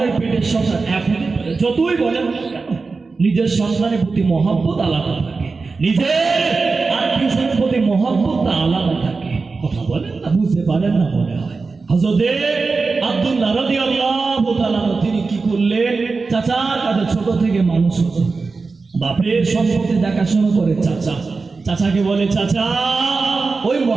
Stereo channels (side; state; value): left; quieter; 4.2 dB